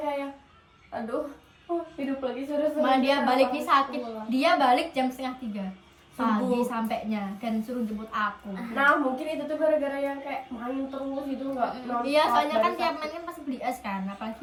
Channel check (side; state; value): both; identical; correlation 1.00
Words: aduh, hidup lagi seru-seru. Malah dia baliknya sakit. Pulang. Dia balik jam 2:30 pagi Subuh. sampainya dan suruh jemput aku. Nah mungkin itu tuh gara-gara yang kayak main terus gitu nggak nonstop. Iya, soalnya kan dari tiap sakit. main kan pasti beli es kan,